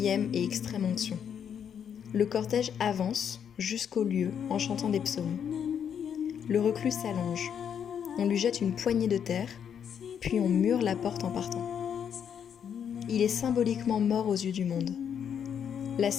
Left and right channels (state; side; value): quieter; right; 8.2 dB